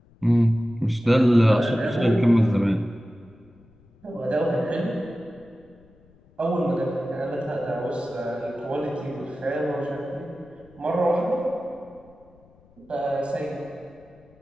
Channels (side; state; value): left; noise; rumble, 29 dB below the sound